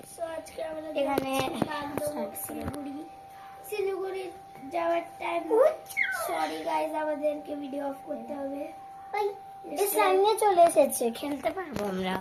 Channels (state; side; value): identical; both; correlation 1.00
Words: So, আজকে আমরা এখানে শিলিগুড়ি শিলিগুড়ি যাওয়ার টাইম। সরি গাইস, আমাদেরকে ভিডিও অফ করতে হবে। এই স্লাইমে চলে এসেছে, খেলতে পারবো আমরা।